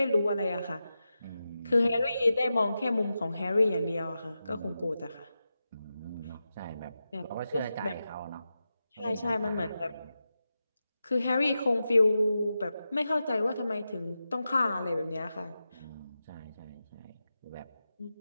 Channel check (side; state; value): both; inverted; correlation -0.91